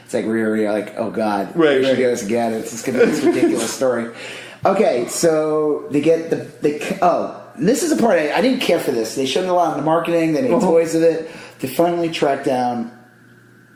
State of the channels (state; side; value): identical; both; correlation 1.00